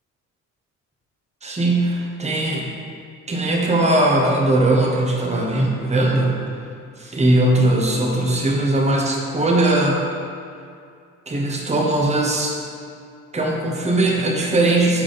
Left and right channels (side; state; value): both; normal; correlation 0.51